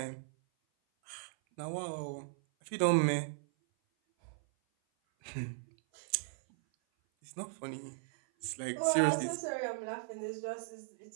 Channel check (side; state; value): left; silent; 53 dB below the other